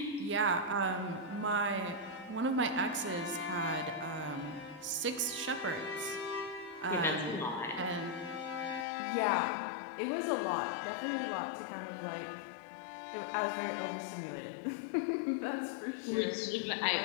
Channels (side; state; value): right; drops out; at 8.8 s